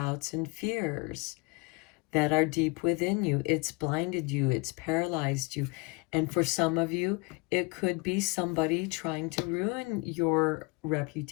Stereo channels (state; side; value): quieter; right; 28.7 dB